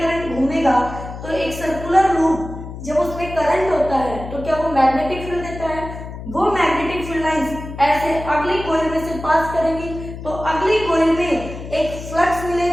करंट घूमेगा तो एक सर्कुलर लूप, जब उसमें करंट होता है तो क्या वो मैग्नेटिक फील्ड देता है? वो मैग्नेटिक फील्ड लाइंस ऐसे अगली कॉइल में से पास करेंगी तो अगली कॉइल में एक फ्लक्स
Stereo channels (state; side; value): noise; left; hum, 10 dB below the sound